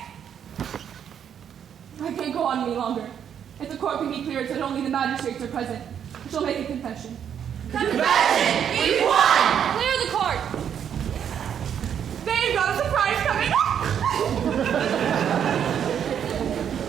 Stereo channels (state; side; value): quieter; left; 8.6 dB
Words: I can't go on any longer. If the court can be cleared so that only the magistrates are present, I shall make a confession. Confession! We won! Clear the court! They've got a surprise coming up.